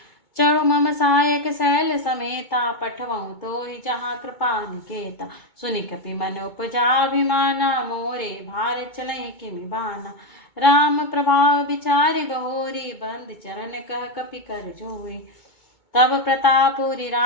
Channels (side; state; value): right; late; 2.2 ms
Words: चढ़ो मम सहायक शैल समेता, पठवऊँ तो ही जहाँ कृपा निकेता। सुनि कपि मन उपजाभिमाना, मोरे भार चलई किमि बाना। राम प्रभाव विचारि बहोरी, बंद चरण कह कपि कर जोई। तब प्रतापुरी